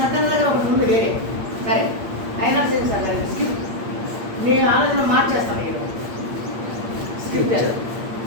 దగ్గర ఒకటి ఉంది వేరే. సరే అయినా సేమ్ సార్ స్కిప్ నీ ఆలోచన మార్చేస్తాను. ఈరోజు స్క్రిప్చర్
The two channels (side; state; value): left; late; 8.7 ms